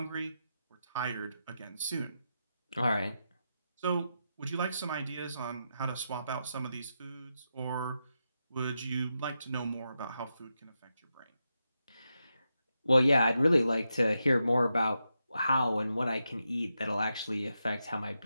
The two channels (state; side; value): inverted; both; correlation -0.87